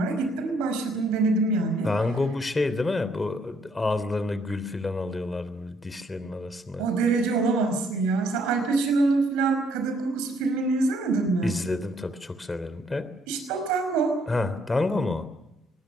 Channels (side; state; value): both; normal; correlation 0.68